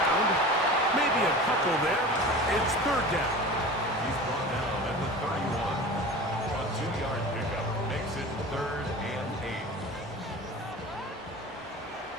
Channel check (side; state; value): both; normal; correlation 0.35